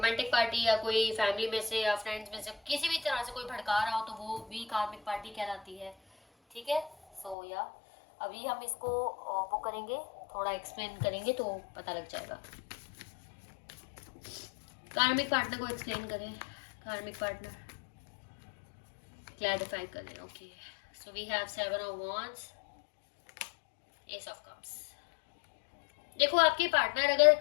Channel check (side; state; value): right; drops out; at 7.4 s